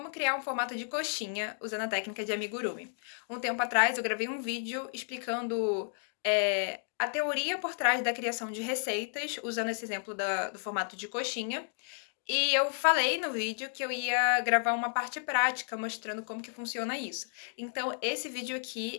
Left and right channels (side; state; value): right; silent; digital silence